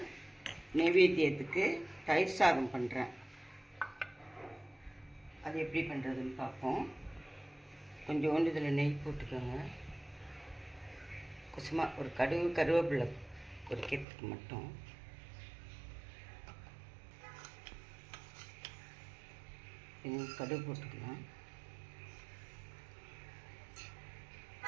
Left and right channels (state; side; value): drops out; left; at 14.1 s